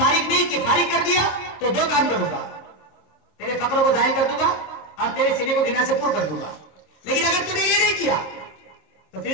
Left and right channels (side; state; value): right; late; 26 ms